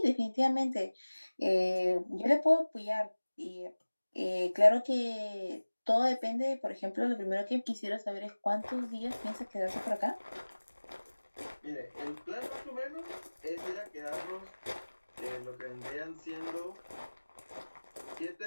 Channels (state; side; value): inverted; both; correlation -1.00